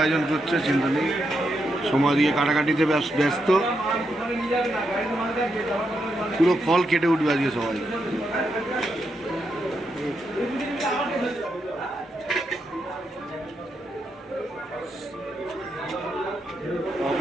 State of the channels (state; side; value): normal; both; correlation 0.82